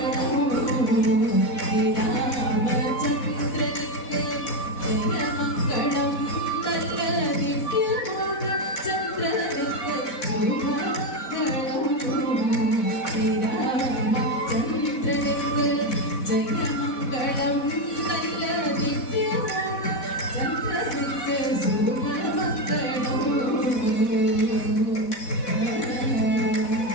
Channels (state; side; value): late; right; 4.1 ms